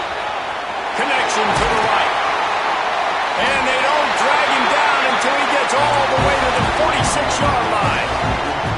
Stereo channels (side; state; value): both; identical; correlation 1.00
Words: Connection to the right. And they don't drag him down until he gets all the way to the 46-yard line.